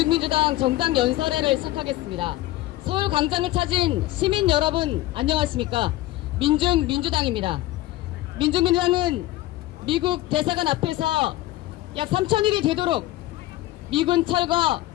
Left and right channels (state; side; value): quieter; right; 16.4 dB